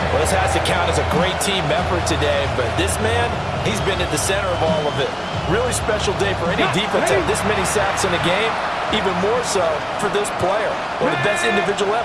Well, this has to count as a great team effort today, but this man, he's been at the center of all of it. Really special day for any defense to have this many sacks in a game, even more so for this player. One of the best individual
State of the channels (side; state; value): both; identical; correlation 1.00